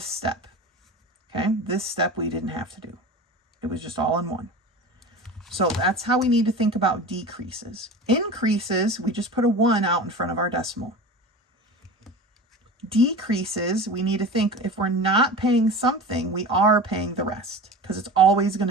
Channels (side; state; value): both; normal; correlation 0.33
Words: step. Okay, this step we didn't have to do. It was just all in one. So that's how we need to think about decreases. Increases, we just put a 1 out in front of our decimal. decreases, we need to think if we're not paying something, we are paying the rest because it's always going